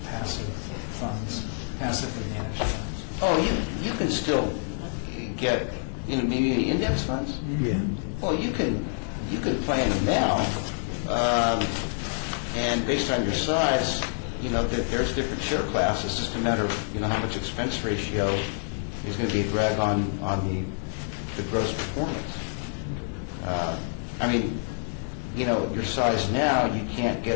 passive funds, passively managed funds? Oh, you can still get, maybe index funds? Yeah. Well, you can you could plan it now, and based on your size, there's different share classes. It's just a matter of, how much expense ratio is going to be a drag on the gross performance. Your size now, you can't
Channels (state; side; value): silent; right; digital silence